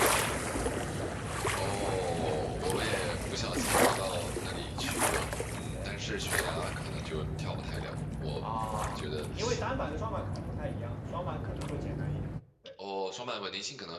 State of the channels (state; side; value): identical; both; correlation 1.00